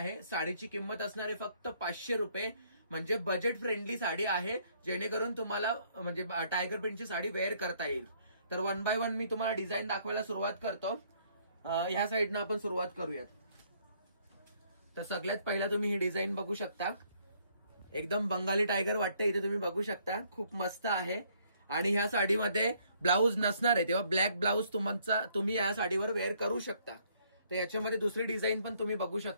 साडीची किंमत असणार आहे फक्त 500 रुपये, म्हणजे बजेट फ्रेंडली साडी आहे, जेणेकरून तुम्हाला म्हणजे टायगर प्रिंटची साडी वेअर करता येईल। तर वन बाय वन मी तुम्हाला डिझाईन दाखवायला सुरुवात करतो। ह्या साईडनं आपण सुरुवात करूयात। तर सगळ्यात पहिला तुम्ही ही डिझाईन बघू शकता, एकदम बंगाली टायगर वाटते इथे तुम्ही बघू शकता, खूप मस्त आहे। आणि ह्या साडीमध्ये ब्लाऊज नसणार आहे, तेव्हा ब्लॅक ब्लाऊज तुम्ही या साडीवर वेअर करू शकता। तर याच्यामध्ये दुसरी डिझाईन पण तुम्ही बघू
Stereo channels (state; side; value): inverted; both; correlation -0.66